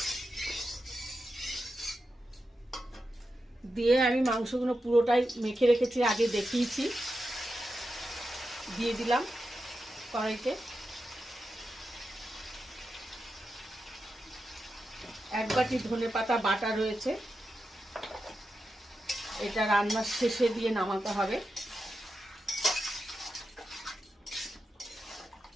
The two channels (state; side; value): normal; both; correlation 0.89